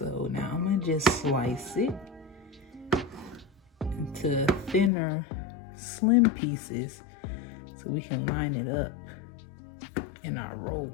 now I'm gonna just slice it into thinner, slim pieces so we can line it up in our roll.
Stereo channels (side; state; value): right; drops out; at 4.9 s